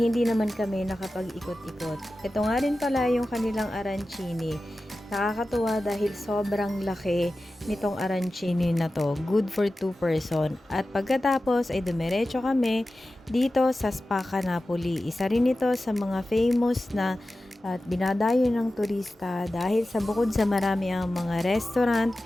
hindi naman kami nakapag-ikot-ikot. Ito nga rin pala yung kanilang arancini. Nakakatuwa dahil sobrang laki nitong arancini na to. Good for 2 person. At pagkatapos ay dumiretso kami dito sa Spacca Napoli. Isa rin ito sa mga famous na at dinadayo ng turista dahil sa bukod sa marami ang mga restaurant,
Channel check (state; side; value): normal; both; correlation 0.94